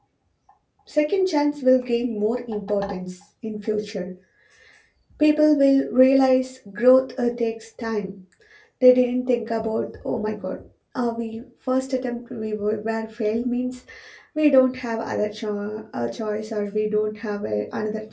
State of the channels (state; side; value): identical; both; correlation 1.00